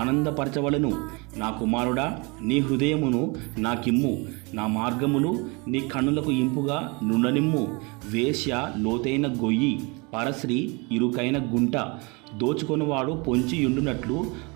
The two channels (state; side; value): quieter; left; 29.0 dB